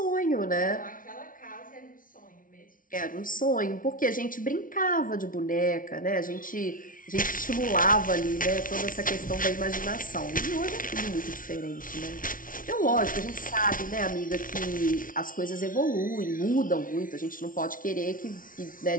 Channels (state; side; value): late; right; 0.39 ms